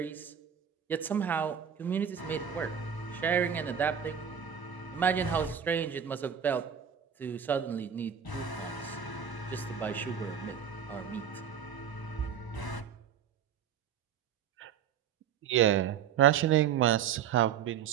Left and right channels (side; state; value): left; quieter; 8.3 dB